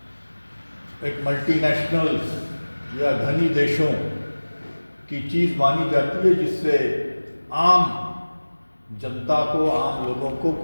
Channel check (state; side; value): inverted; both; correlation -1.00